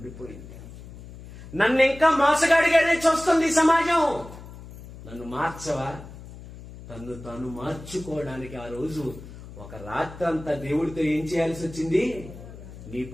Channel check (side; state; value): left; noise; hum, 15 dB below the sound